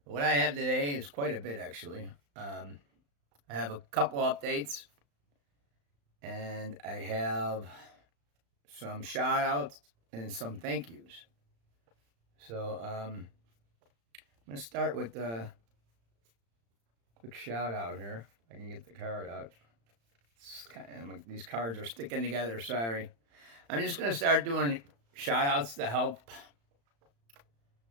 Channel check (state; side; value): late; left; 35 ms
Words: What I have today is quite a bit, actually. I have a couple updates, and I have some shout outs and some thank yous. So I'm going to start with a quick shout out here. I can get the card out. These cards are sticking together, sorry. I'm just going to start doing shout outs to help